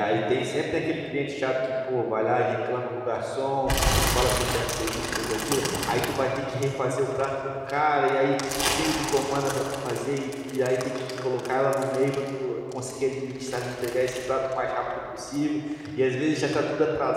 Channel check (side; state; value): both; identical; correlation 1.00